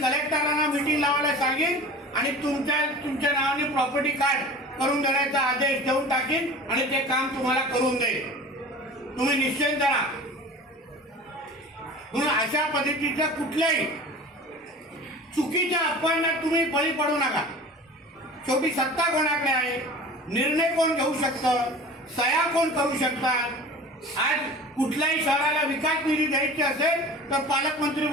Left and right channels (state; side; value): normal; both; correlation 0.39